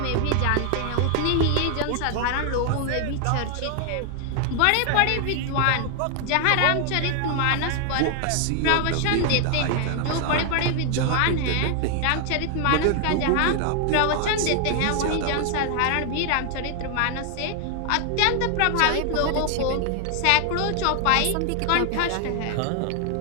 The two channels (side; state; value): both; different; correlation 0.00